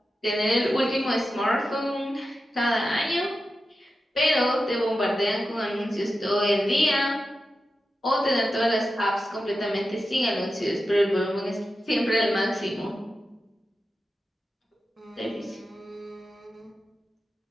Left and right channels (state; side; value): normal; both; correlation 0.92